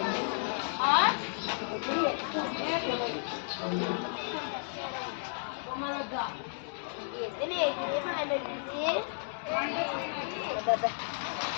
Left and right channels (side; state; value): right; silent; digital silence